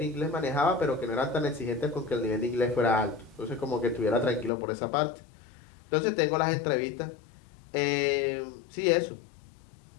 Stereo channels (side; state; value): right; drops out; at 4.5 s